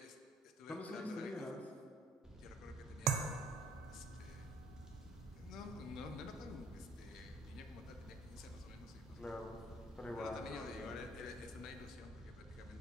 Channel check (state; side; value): normal; both; correlation 0.61